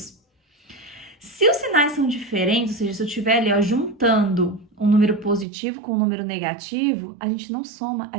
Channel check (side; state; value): left; drops out; at 5.5 s